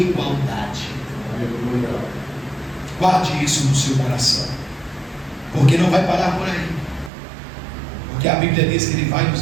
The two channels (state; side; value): drops out; left; at 7.1 s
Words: Aleluia. Guarde isso no seu coração, porque não vai parar por aí, porque a Bíblia diz que Ele vai